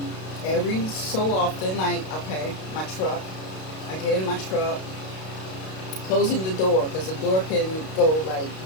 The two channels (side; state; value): right; late; 32 ms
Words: Every so often, like, okay, my truck, I get in my truck, closing the door, because the door can go, like,